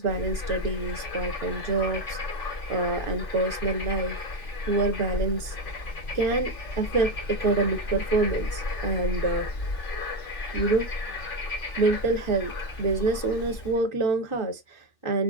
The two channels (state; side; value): late; right; 2.6 ms